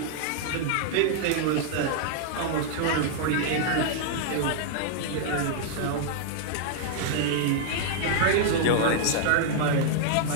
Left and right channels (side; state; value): both; different; correlation -0.01